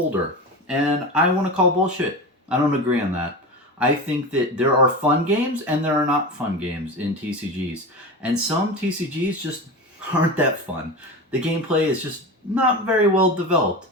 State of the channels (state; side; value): normal; both; correlation 0.26